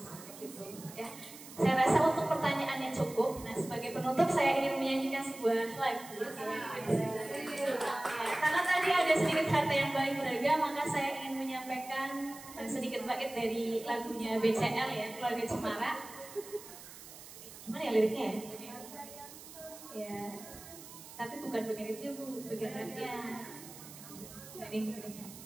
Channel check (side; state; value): right; noise; hiss, 16 dB below the sound